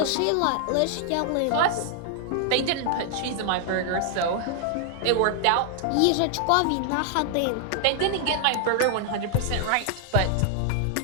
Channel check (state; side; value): different; both; correlation 0.00